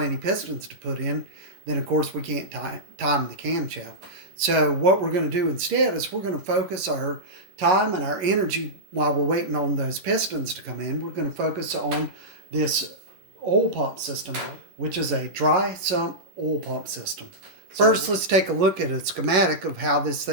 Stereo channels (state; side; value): late; left; 11 ms